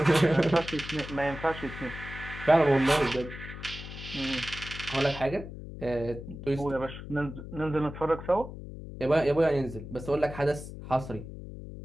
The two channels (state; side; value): noise; left; hum, 11 dB below the sound